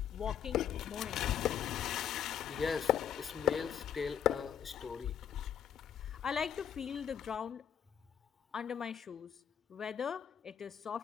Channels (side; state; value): right; quieter; 8.8 dB